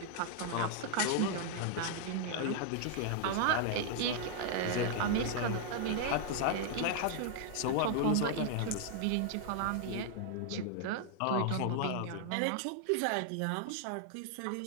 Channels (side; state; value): both; different; correlation 0.00